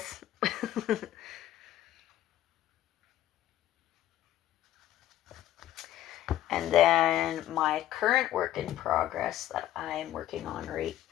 And then my current work in progress that I'm working on right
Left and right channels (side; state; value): right; quieter; 13.1 dB